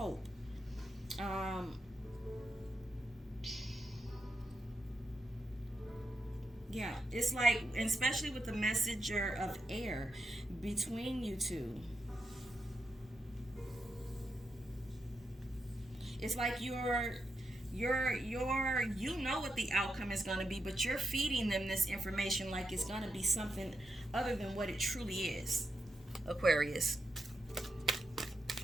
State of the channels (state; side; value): normal; both; correlation 0.84